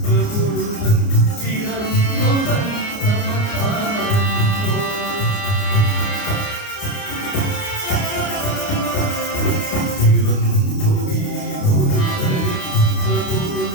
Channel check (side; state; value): right; late; 29 ms